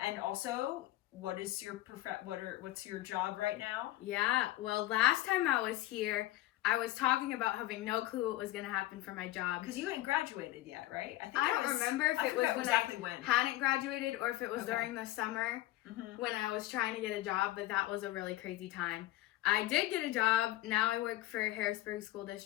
also, what's your job right now? Yeah, well, last time I was here, I was talking about having no clue what was going to happen for my job. Because you hadn't graduated yet, right? I don't remember if it was when I hadn't graduated or if it was during the summer when I was trying to get a job, but that was a really crazy time. I did get a job. Now I work for Harrisburg School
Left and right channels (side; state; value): right; quieter; 16.4 dB